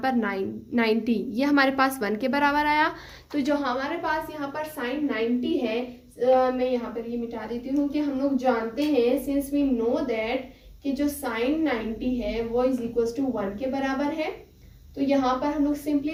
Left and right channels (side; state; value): both; identical; correlation 1.00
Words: 90 ये हमारे पास 1 के बराबर आया। तो जो हमारे पास यहाँ पर साइन 90 है, मैं यहाँ पर ये मिटा देती हूँ कि हम लोग जानते हैं, सिंस वी नो दैट कि जो साइन 90 है वो इज इक्वल टू 1 के बराबर है। तो यहाँ पर हम लोग